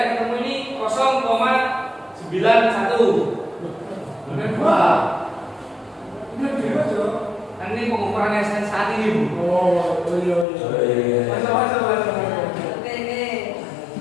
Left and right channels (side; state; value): right; drops out; at 10.5 s